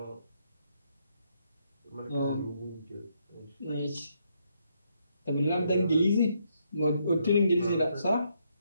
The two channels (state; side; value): inverted; both; correlation -0.75